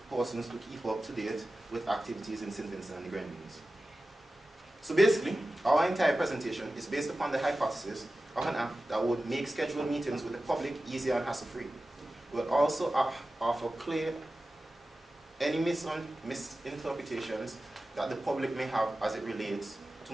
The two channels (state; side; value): normal; both; correlation 0.95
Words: persons to keep up to date with activities in St. Vincent and the Grenadines. So basically, our entire presentation is based upon the hypothesis of an app that would make scheduled meetings with the public easier and hassle-free. We'll also offer clear any misinterpretations that the public may have as it relates to